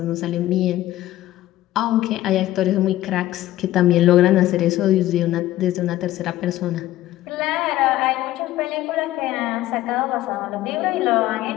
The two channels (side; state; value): right; quieter; 14.8 dB